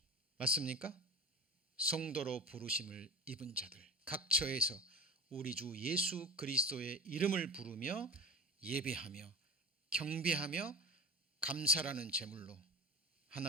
맞습니까? 성도로 부르심을 입은 자들 각 처에서 우리 주 예수 그리스도의 이름을 부르며 예배하며 경배하며 감사라는 제물로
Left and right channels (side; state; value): both; normal; correlation 0.32